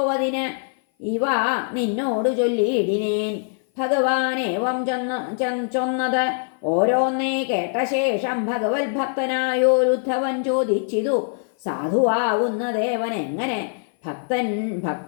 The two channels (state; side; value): silent; right; 56 dB below the other